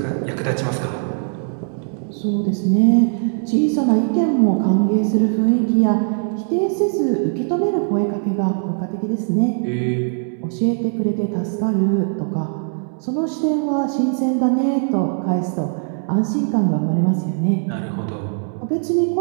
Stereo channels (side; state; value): left; silent; 57 dB below the other